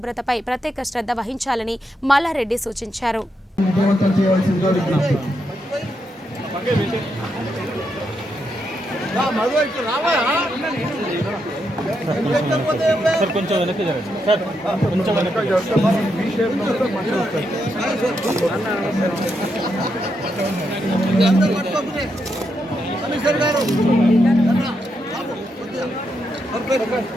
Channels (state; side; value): normal; both; correlation 0.82